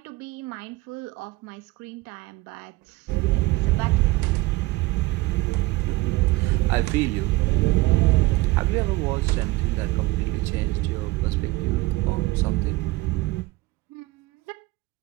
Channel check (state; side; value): quieter; left; 20.3 dB